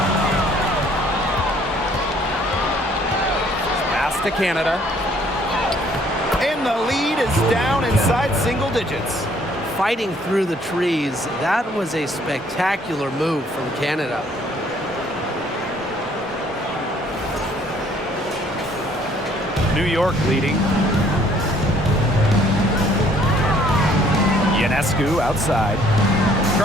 To Canada, and the lead is down inside single digits. Fighting through the trees, that was a spectacular move from Canada. New York leading. Ionescu outside.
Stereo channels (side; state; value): both; normal; correlation 0.61